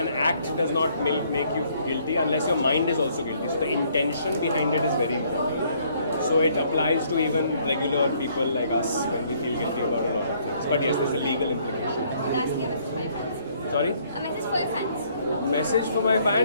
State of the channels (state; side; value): inverted; both; correlation -0.65